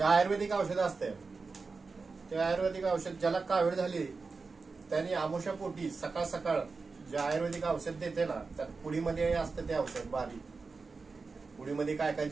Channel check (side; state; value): left; quieter; 4.3 dB